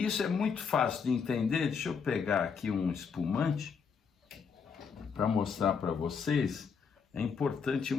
isso é muito fácil de entender. Deixa eu pegar aqui um espumante para mostrar para vocês. É importante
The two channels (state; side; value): quieter; right; 6.0 dB